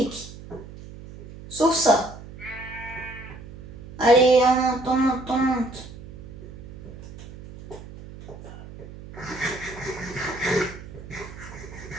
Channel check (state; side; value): noise; right; hum, 14 dB below the sound